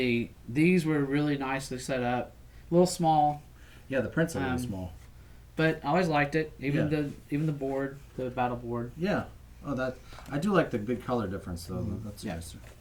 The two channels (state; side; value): identical; both; correlation 1.00